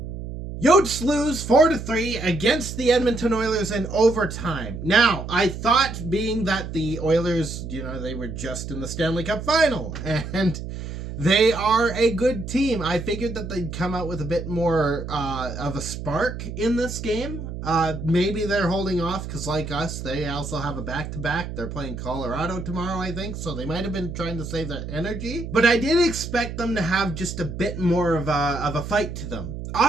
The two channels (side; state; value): right; noise; hum, 8 dB below the sound